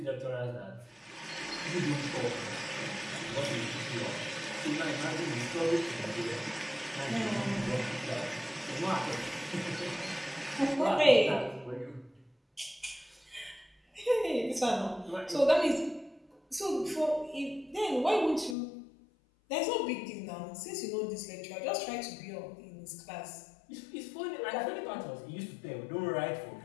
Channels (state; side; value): drops out; right; at 18.6 s